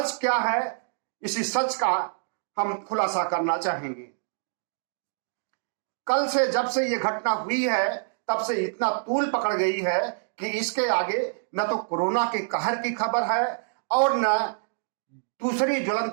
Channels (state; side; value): silent; left; digital silence